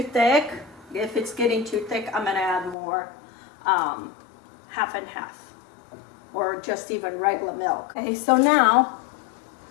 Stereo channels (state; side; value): drops out; right; at 2.8 s